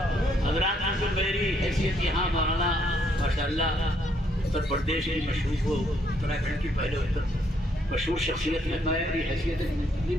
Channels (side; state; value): both; normal; correlation 0.71